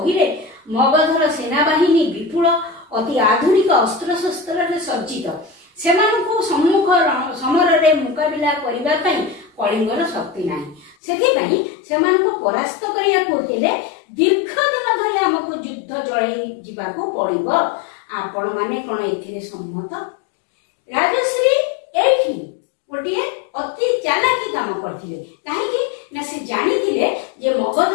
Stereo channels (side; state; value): right; drops out; at 11.0 s